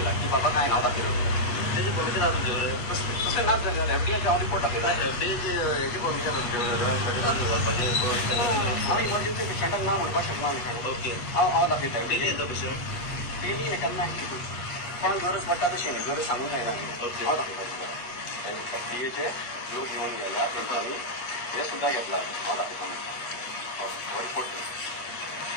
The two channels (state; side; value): late; right; 8.3 ms